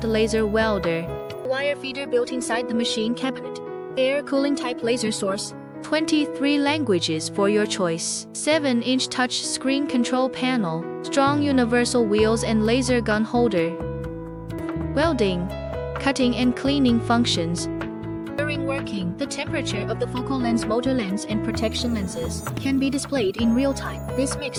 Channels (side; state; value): both; identical; correlation 1.00